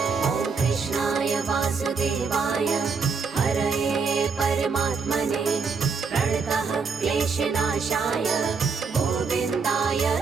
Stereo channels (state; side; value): quieter; left; 5.1 dB